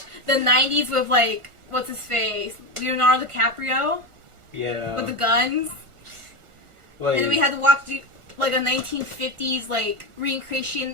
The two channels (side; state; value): left; late; 1.4 ms